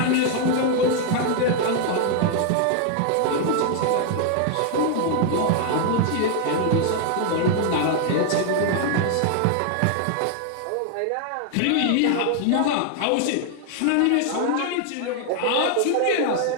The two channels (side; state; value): both; different; correlation 0.00